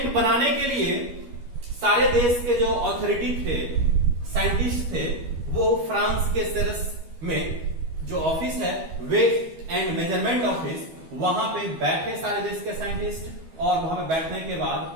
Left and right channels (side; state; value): left; late; 12 ms